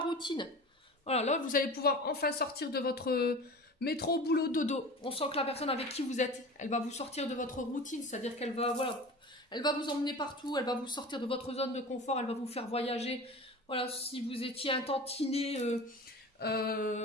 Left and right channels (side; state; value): both; normal; correlation 0.35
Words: Voilà, là vous allez pouvoir enfin sortir de votre métro, boulot, dodo. On sent que la personne avec qui vous êtes, elle va vous sortir de votre routine, c'est-à-dire qu'elle va, voilà, elle va vous emmener partout, elle va vous sortir de votre zone de confort, elle va vous faire voyager. Voilà, si vous étiez un tantinet